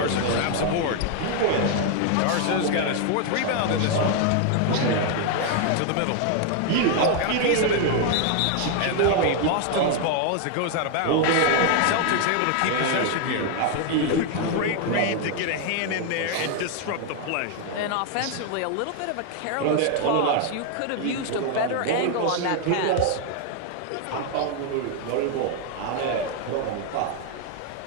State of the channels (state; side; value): different; both; correlation 0.00